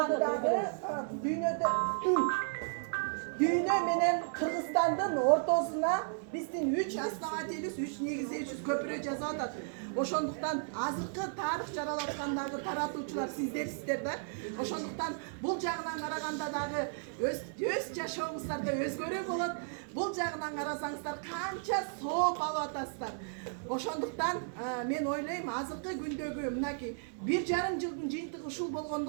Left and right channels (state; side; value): silent; left; digital silence